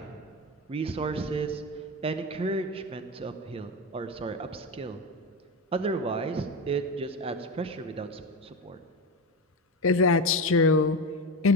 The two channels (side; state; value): both; normal; correlation 0.18